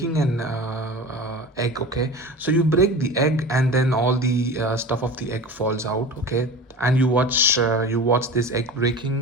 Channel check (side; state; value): both; normal; correlation 0.33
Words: an egg. Okay, so you break the egg and then all the stuff of the egg falls out. Okay, and you watch this egg